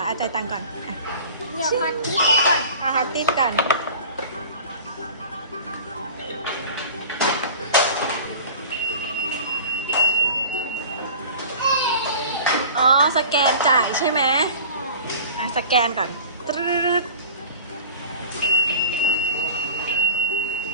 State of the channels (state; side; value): inverted; both; correlation -0.40